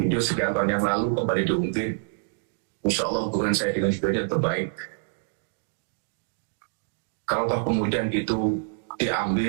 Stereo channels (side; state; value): left; silent; digital silence